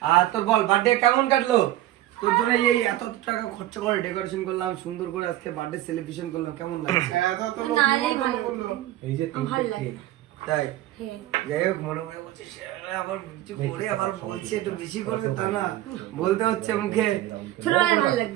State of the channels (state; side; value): quieter; left; 14.6 dB